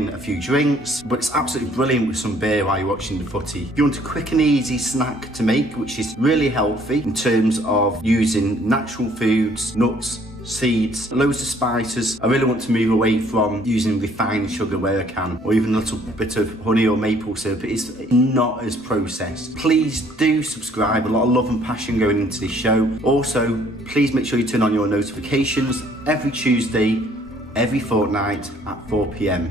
a few drinks, but it's absolutely brilliant with some beer while you're watching the footy. If you want a quick and easy snack to make, which is really healthy in terms of using natural foods, nuts, seeds, loads of spices. I really want to move away from using refined sugar where I can, or even a little bit of honey or maple syrup. It's not as processed. Please do subscribe, a lot of love and passion going into this show. Also, please make sure you turn on your notifications every Tuesday, every fortnight at 4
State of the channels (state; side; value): normal; both; correlation 0.61